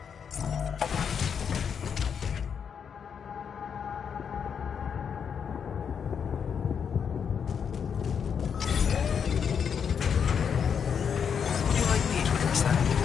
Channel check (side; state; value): right; quieter; 7.1 dB